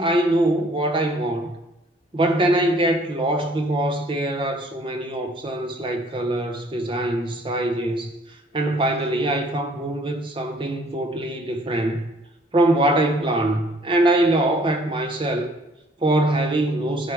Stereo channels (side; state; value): both; normal; correlation 0.58